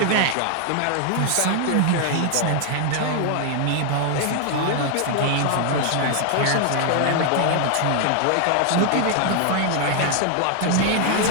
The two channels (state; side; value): different; both; correlation 0.00